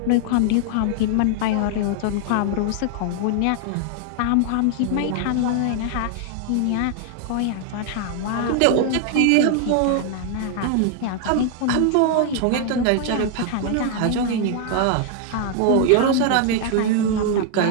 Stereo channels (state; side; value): different; both; correlation 0.00